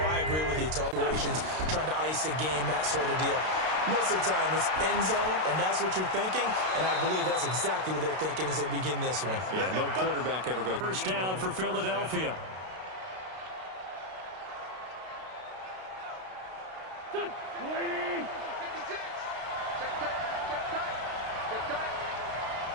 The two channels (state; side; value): late; left; 32 ms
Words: agree with you. Situations, trying to ice a game, that sort of deal. Most of the time, it's end zone, and that's what you're thinking, and I believe that's exactly what they're thinking as they begin this one. Yeah, no quarterback ever goes. 1st down for Philadelphia. Waiting. 56. Check tight.